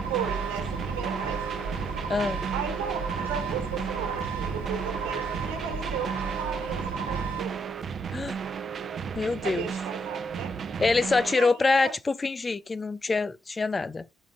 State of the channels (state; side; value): normal; both; correlation 0.74